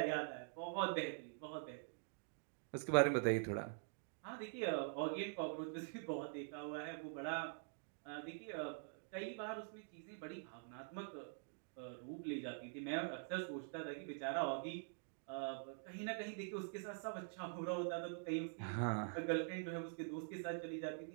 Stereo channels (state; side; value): silent; left; digital silence